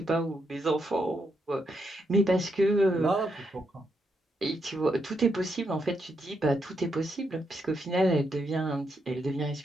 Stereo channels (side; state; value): both; normal; correlation 0.80